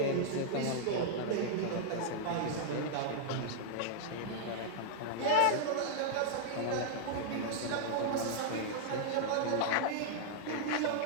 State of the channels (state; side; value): different; both; correlation -0.01